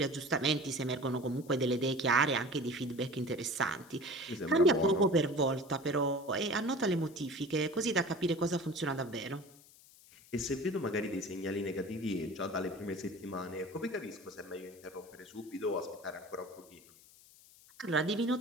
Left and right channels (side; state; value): left; noise; hiss, 24 dB below the sound